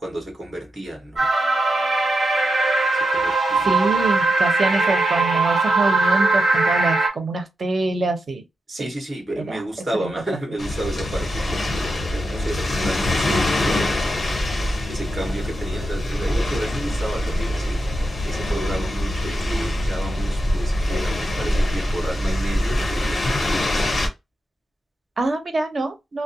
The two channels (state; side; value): normal; both; correlation 0.87